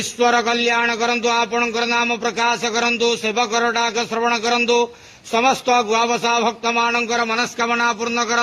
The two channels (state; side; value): identical; both; correlation 1.00